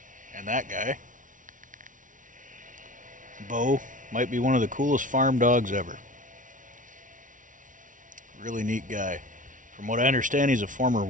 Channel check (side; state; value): left; late; 0.38 ms